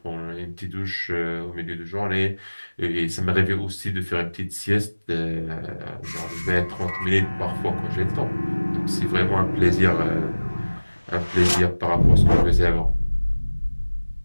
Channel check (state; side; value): inverted; both; correlation -1.00